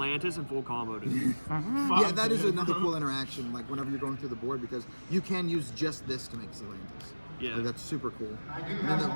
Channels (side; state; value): both; inverted; correlation -1.00